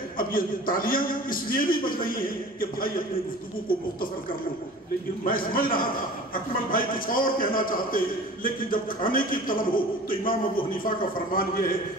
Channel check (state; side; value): normal; both; correlation 0.41